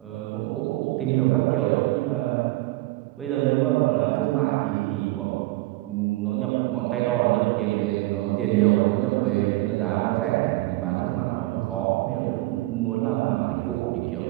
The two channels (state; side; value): quieter; left; 19.6 dB